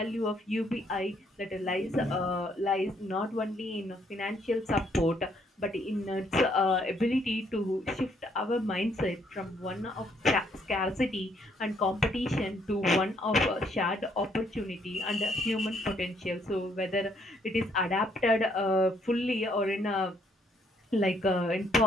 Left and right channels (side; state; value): both; normal; correlation 0.69